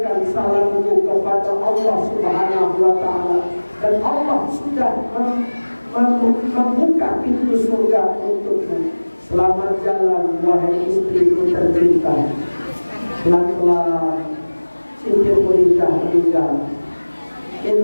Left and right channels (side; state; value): both; inverted; correlation -1.00